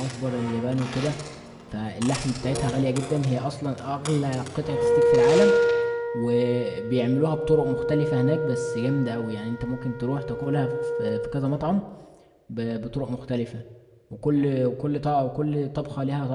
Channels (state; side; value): identical; both; correlation 1.00